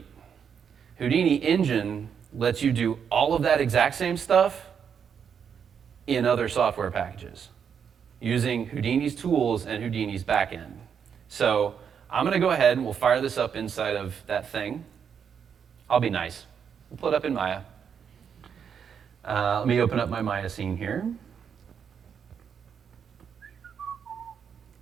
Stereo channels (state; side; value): quieter; left; 7.3 dB